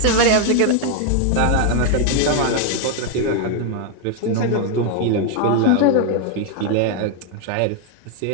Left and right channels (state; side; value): different; both; correlation 0.01